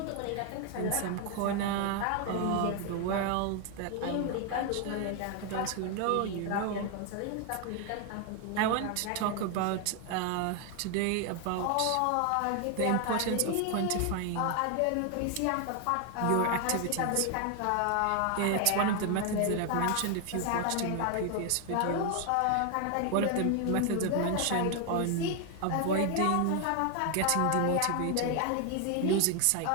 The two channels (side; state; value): both; different; correlation 0.00